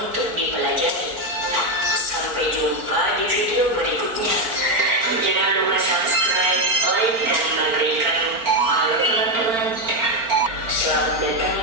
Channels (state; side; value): late; left; 4.4 ms